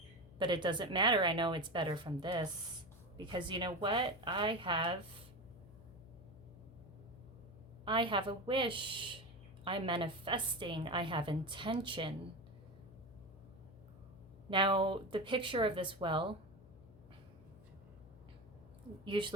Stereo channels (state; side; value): noise; left; hum, 21 dB below the sound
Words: But it doesn't matter. I know it's better from this, because you know what? I have a wish. I'm manifesting. I have intention. Now, the picture of this well,